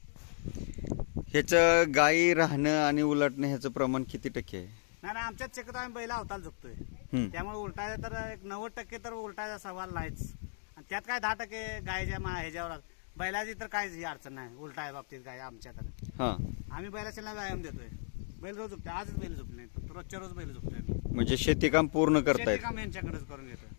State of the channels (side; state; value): right; silent; digital silence